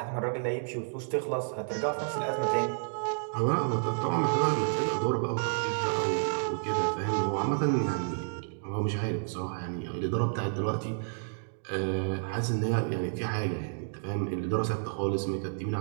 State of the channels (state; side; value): silent; left; digital silence